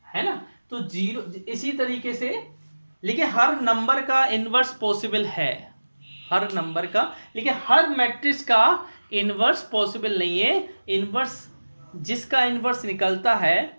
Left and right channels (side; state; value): both; inverted; correlation -1.00